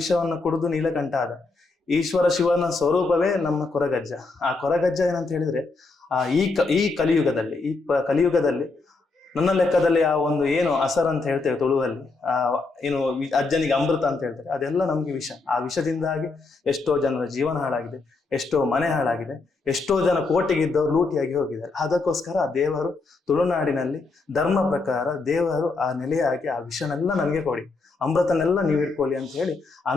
ಕುಡಿದು ನೀಲಕಂಠ ಆದ. ಈಶ್ವರ ಶಿವನ ಸ್ವರೂಪವೇ ನಮ್ಮ ಕೊರಗಜ್ಜ. ಆ ಕೊರಗಜ್ಜ ಏನಂತ ಹೇಳಿದ್ರೆ, ಈ ಕಲಿಯುಗದಲ್ಲಿ ನನ್ನ ಲೆಕ್ಕದಲ್ಲಿ ಆ ಒಂದು ಏನು ಅಸರ್ ಅಂತ ಹೇಳ್ತೇವೆ ತುಳುವಲ್ಲಿ, ಏನು ಅಜ್ಜನಿಗೆ ಅಮೃತ ಅಂತ ಹೇಳ್ತಾರೆ, ಅದೆಲ್ಲ ನಮ್ಗೆ ವಿಷ. ಆ ವಿಷದಿಂದಾಗಿ ಎಷ್ಟೋ ಜನರ ಜೀವನ ಹಾಳಾಗಿದೆ, ಎಷ್ಟೋ ಮನೆ ಹಾಳಾಗಿದೆ, ಎಷ್ಟೋ ಜನ ಕೋಟೆಗಿದ್ದವರು ಲೂಟಿಯಾಗಿ ಹೋಗಿದ್ದಾರೆ. ಅದಕ್ಕೋಸ್ಕರ ಆ ದೇವರು ತುಳುನಾಡಿನಲ್ಲಿ ಧರ್ಮ ಪ್ರಕಾರ ದೇವರು ಆ ನೆಲೆಯಾಗಿ ಆ ವಿಷನೆಲ್ಲ ನನಗೆ ಕೊಡಿ, ಅಮೃತನೆಲ್ಲ ನೀವು ಇಟ್ಕೊಳ್ಳಿ ಅಂತ ಹೇಳಿ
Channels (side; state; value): right; quieter; 3.7 dB